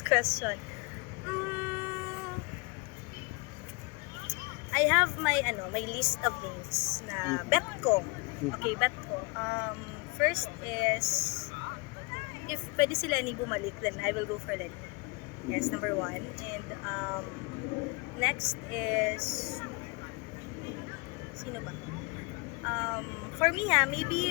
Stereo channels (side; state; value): right; quieter; 29.8 dB